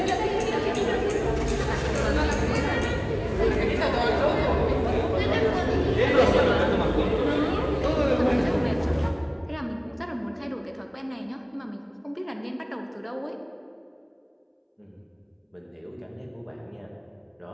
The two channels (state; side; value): identical; both; correlation 1.00